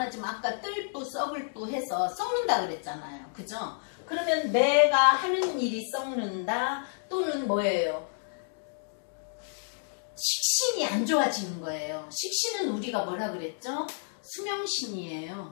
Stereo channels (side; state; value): right; silent; digital silence